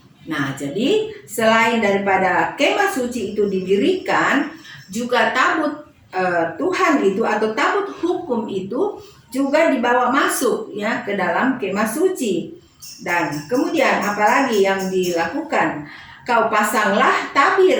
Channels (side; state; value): both; identical; correlation 1.00